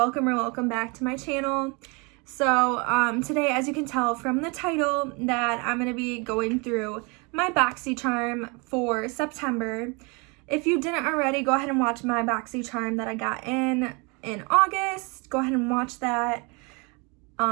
back to my channel. So today, as you can tell from the title, that I'm going to be going through my Boxycharm for September. If you didn't already, go ahead and watch my Boxycharm that I got in August. Go ahead and watch that.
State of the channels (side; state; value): left; quieter; 30.1 dB